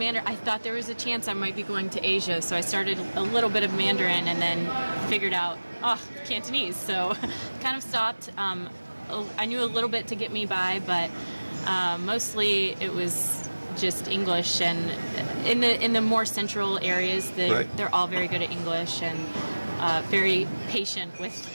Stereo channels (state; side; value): inverted; both; correlation -1.00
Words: I thought there was a chance I might be going to Asia, so I started a little bit of Mandarin and then figured out, Cantonese. So kind of stopped. I knew a little bit to get me by, but mostly it was just English. And in the more central areas, they're all very good at English and very patient with